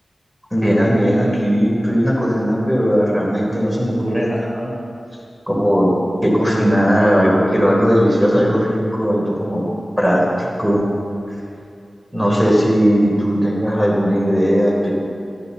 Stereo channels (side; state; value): both; normal; correlation 0.97